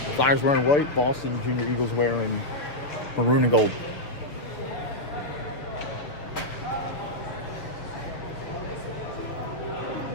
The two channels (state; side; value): late; right; 7.0 ms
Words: Flyers wearing white, Boston Junior Eagles wearing maroon and gold.